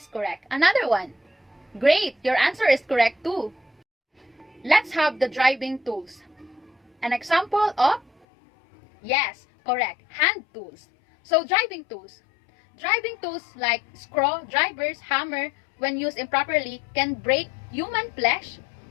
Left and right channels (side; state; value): right; drops out; at 8.2 s